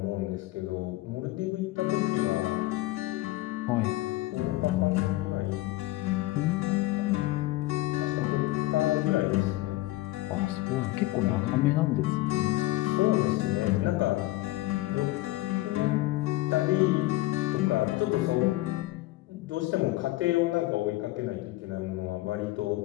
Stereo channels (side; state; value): right; quieter; 18.1 dB